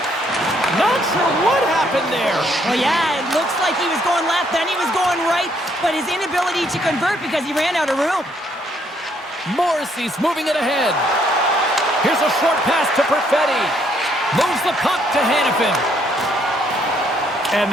Not sure what happened there. Well, yeah, it looks like he was going left, then he was going right, but his inability to convert because he ran out of room. Morrissey's moving it ahead. Here's a short pass to Perfetti. Moves the puck to Hannafin. And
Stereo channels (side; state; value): both; normal; correlation 0.69